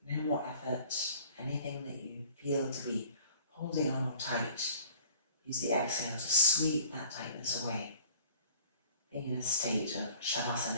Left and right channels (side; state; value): both; inverted; correlation -0.49